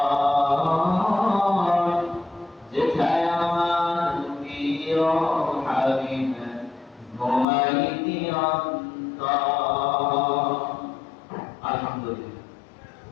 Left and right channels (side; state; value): right; drops out; at 7.5 s